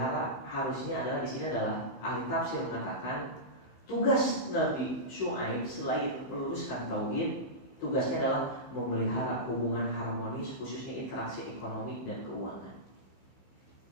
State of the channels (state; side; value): late; right; 15 ms